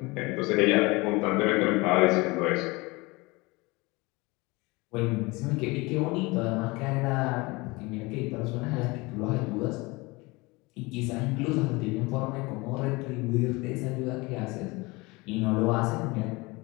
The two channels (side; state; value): right; quieter; 24.2 dB